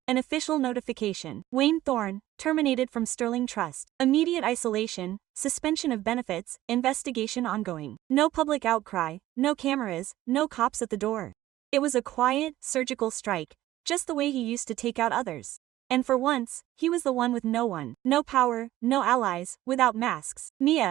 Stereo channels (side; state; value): left; quieter; 14.9 dB